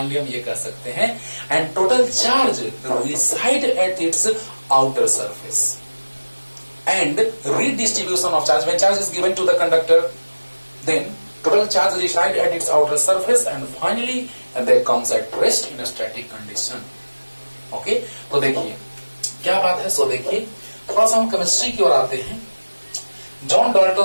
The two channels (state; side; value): inverted; both; correlation -1.00